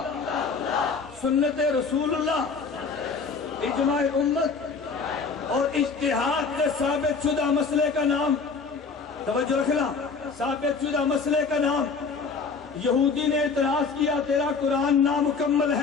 سنت رسول اللہ، اجماع امت اور اجتہاد سے ثابت شدہ مسئلے کا نام، توجہ رکھنا، ثابت شدہ مسئلے کا نام۔ یہودی نے اعتراض کیا تیرا قرآن نامکمل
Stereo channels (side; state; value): right; quieter; 4.9 dB